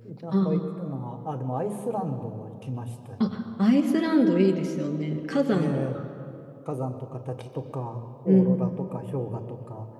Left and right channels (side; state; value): both; identical; correlation 1.00